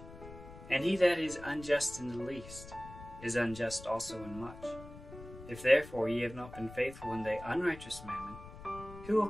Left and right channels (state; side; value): noise; left; rumble, 15 dB below the sound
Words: and he that is unjust in the least is unjust also in much. If therefore ye have not been faithful in the unrighteous mammon, who will